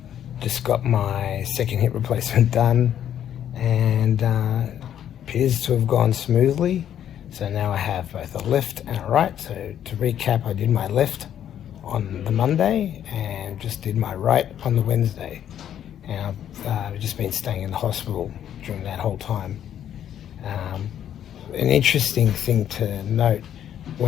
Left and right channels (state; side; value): quieter; right; 10.2 dB